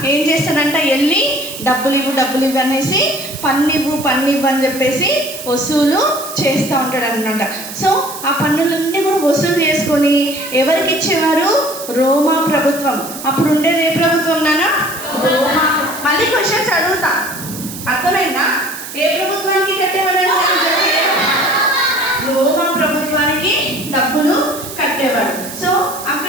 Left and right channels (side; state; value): right; noise; hiss, 11 dB below the sound